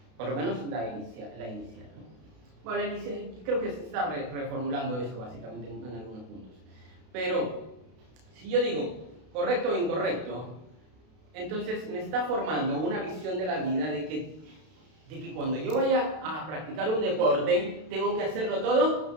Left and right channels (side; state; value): left; late; 32 ms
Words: por lo menos la inicial, ¿no? Bueno, la inicial, creo que se está reformulando eso básicamente en algunos puntos, pero si yo digo correcto o incorrecto, entonces me está formando una visión de la vida de que cuando yo vaya a practicar un deporte, tengo que hacerlo